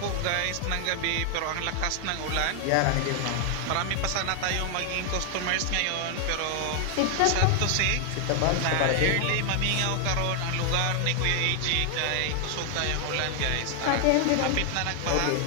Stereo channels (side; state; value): both; different; correlation 0.00